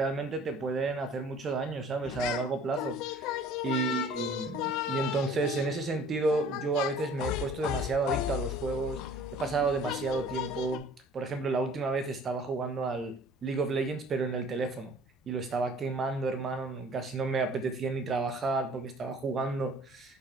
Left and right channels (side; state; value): both; normal; correlation 0.50